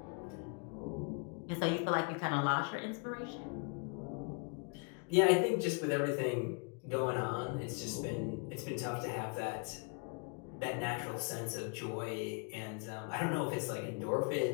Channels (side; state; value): right; quieter; 36.7 dB